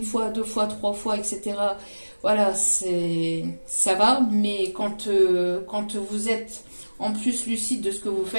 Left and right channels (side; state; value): both; inverted; correlation -1.00